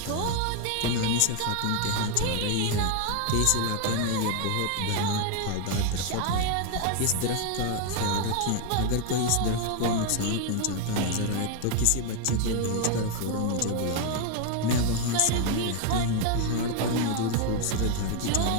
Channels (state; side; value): different; both; correlation 0.01